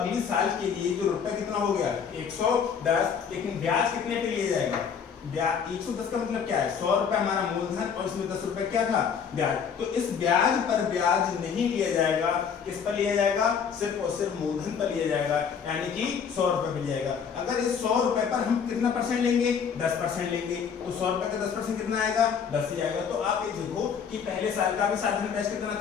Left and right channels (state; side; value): quieter; right; 6.9 dB